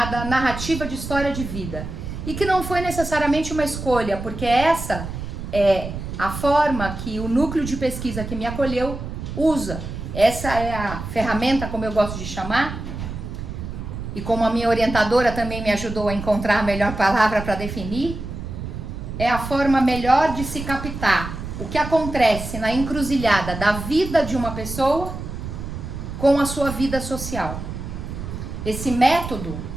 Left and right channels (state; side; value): noise; right; rumble, 7 dB below the sound